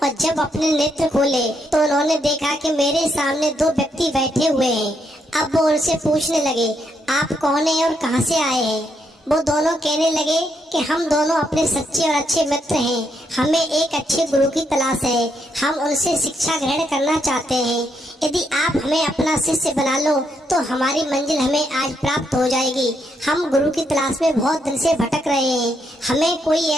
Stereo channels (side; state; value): both; normal; correlation 0.77